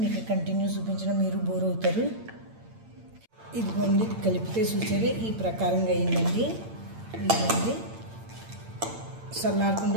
మీకు కంటిన్యూ చూపించడం మీరు బోర్ అవుతారు ఇదిగోండి ఇది కలిపితే చూసారే ఈ ప్రకారంగా అయిందండి ఇదిగోండి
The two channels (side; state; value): left; late; 8.8 ms